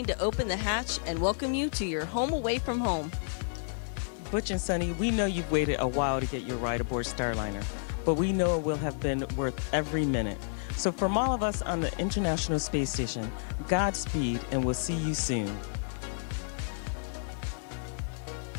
to open the hatch and welcome you to your home away from home. Butch and Sunny, we know you've waited a while to get your ride aboard Starliner, but we know it will have been worth every minute. So from all of us on the International Space Station, Godspeed, and we'll see you soon.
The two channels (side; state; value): right; silent; digital silence